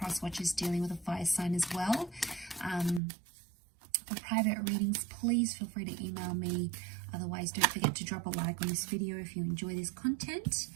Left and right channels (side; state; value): left; drops out; at 3.0 s